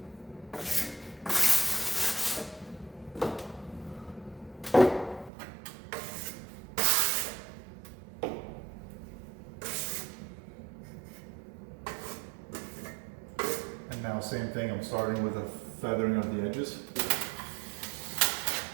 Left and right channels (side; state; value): left; drops out; at 5.3 s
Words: And now same thing, I'm starting with a feathering of the edges.